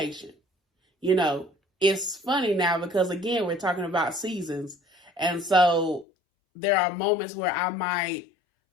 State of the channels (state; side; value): drops out; right; at 6.1 s